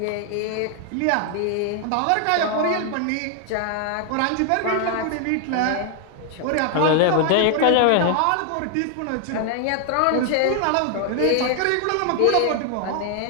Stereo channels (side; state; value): both; different; correlation 0.00